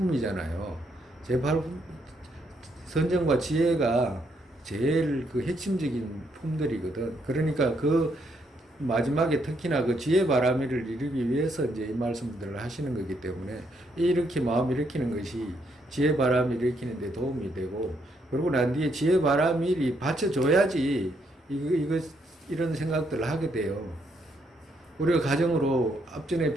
선정과 지혜가 제일 그 핵심적인 품들이거든. 그러니까 그 마지막에 특히나 그 지혜 바람이를 이루기 위해서 이제 이 말씀들을 하시는 거기 때문에 이렇게 마음 일으키는 것이 지혜 바람을 일으키는 데 도움이 되고, 그러고 난 뒤에 지혜 바람일이 받쳐줘야지 이런 생각들을 하게 돼요. 우리가 가정으로 앞전에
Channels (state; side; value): normal; both; correlation 0.74